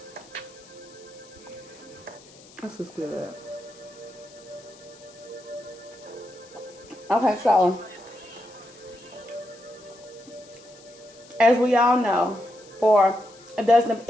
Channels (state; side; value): noise; left; hiss, 23 dB below the sound